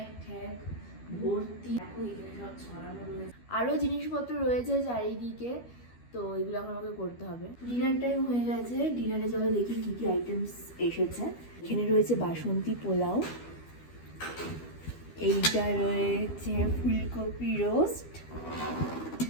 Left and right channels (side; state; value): right; late; 12 ms